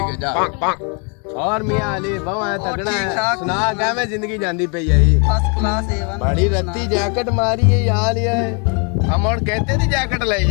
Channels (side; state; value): right; quieter; 36.6 dB